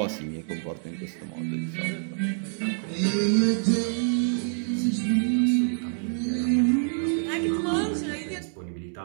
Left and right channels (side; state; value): left; silent; digital silence